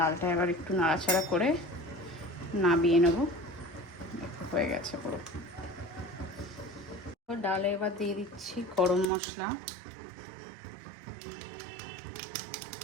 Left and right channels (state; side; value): drops out; left; at 9.1 s